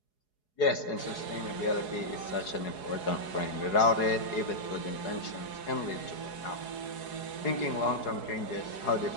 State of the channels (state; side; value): late; right; 4.8 ms